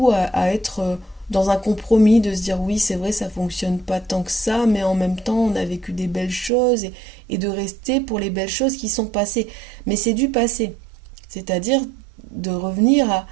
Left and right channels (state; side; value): drops out; left; at 6.5 s